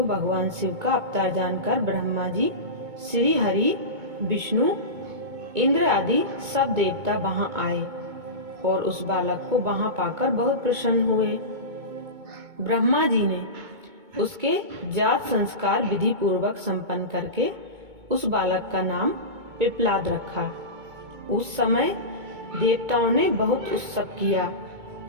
भगवान शिव का अवतार जानकर ब्रह्मा जी, श्री हरि, विष्णु, इंद्र आदि सब देवता वहां आए और उस बालक को वहां पाकर बहुत प्रसन्न हुए। ब्रह्मा जी ने उसके जात संस्कार विधि पूर्वक संपन्न करके उस बालक का नाम पिप्लाद रखा। उस समय देवताओं ने बहुत उत्सव किया,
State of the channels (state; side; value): late; left; 2.2 ms